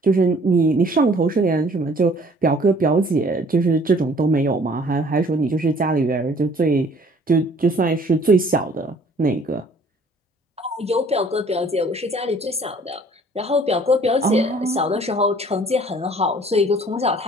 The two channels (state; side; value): normal; both; correlation 0.55